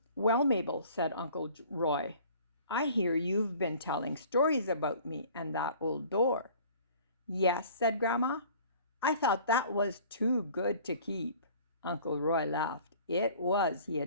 "Well, Mabel," said Uncle Roy, "I hear you've been telling stories about me and that old door." "Yes," said Grandma. "I thought that was too good to keep." Uncle Roy laughed. "It was," he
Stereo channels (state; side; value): inverted; both; correlation -0.49